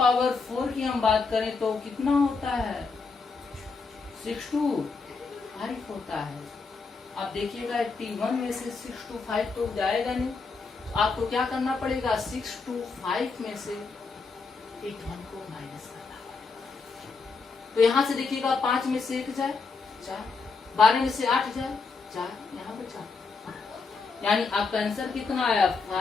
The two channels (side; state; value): right; quieter; 4.5 dB